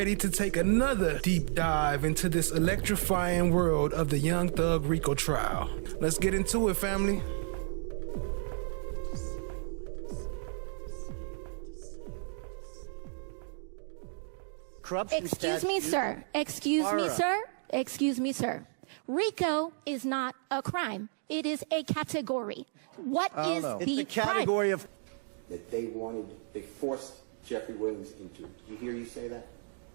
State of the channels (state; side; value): silent; left; 56 dB below the other